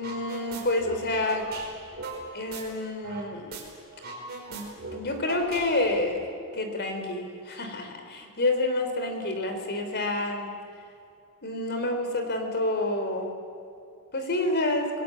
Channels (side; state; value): both; normal; correlation -0.20